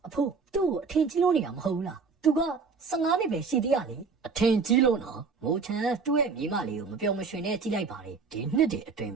အဖိုးသူ့ကိုအထင်ကြီးလို့နေတာမဟုတ်ဘူးလားသူက15နှစ်ပဲရှိသေးရလေအထင်ကြီးလို့နော်မိုးချန်သူ့ရဲ့မိမလေးကိုမပြောမရွှင်နဲ့ကြည့်လိုက်ပါလေဒီနှစ်တည်းအတွင်း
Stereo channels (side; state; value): left; quieter; 4.9 dB